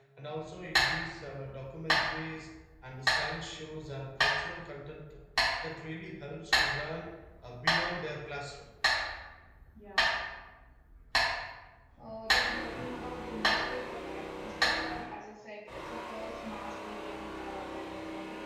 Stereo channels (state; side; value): identical; both; correlation 1.00